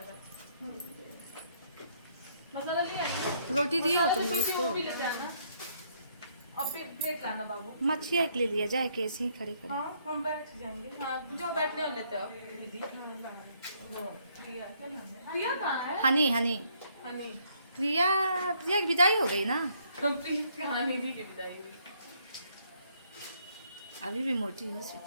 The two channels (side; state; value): both; inverted; correlation -0.69